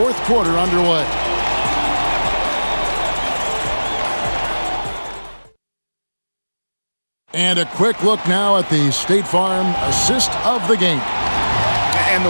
quarter underway. And a quick look now at the State Farm assist of the game. And the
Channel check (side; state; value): both; inverted; correlation -1.00